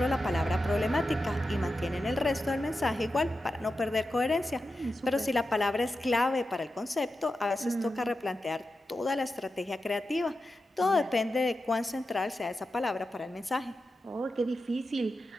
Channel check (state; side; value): normal; both; correlation 0.90